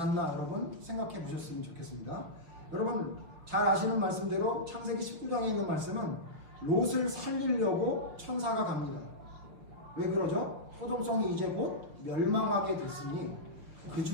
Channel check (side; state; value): left; late; 6.2 ms